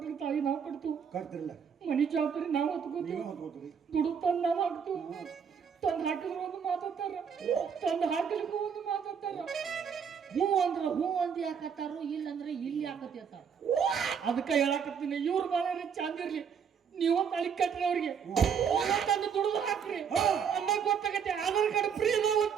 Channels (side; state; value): left; quieter; 7.1 dB